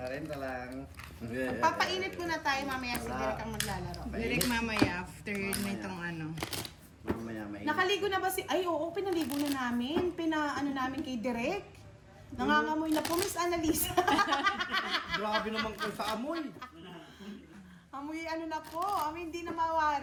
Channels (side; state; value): both; identical; correlation 1.00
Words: lang. Papainit muna tayo mamaya si Derek ang maglalaro. Direct mamaya after nitong Mamaya may. Nakaligo na ba si... Ay, oo, pinaligo na namin. Namin kay Derek. Nangangamoy na po, Miss Annalisa. Grabe naman ko sa amoy. Amoy na po. Amoy hindi na